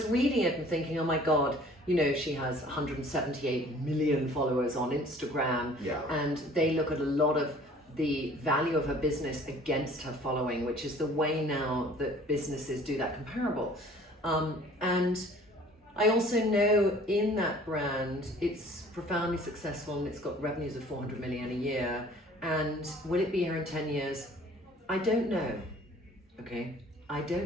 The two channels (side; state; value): both; normal; correlation 0.51